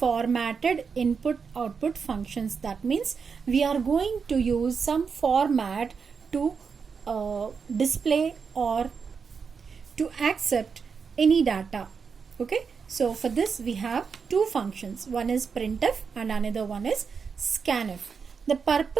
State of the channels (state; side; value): quieter; left; 5.7 dB